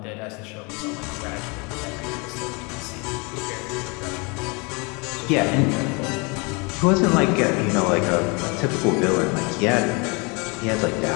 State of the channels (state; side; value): quieter; right; 30.0 dB